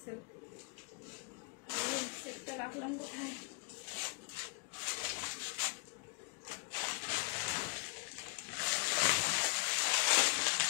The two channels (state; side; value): quieter; right; 33.1 dB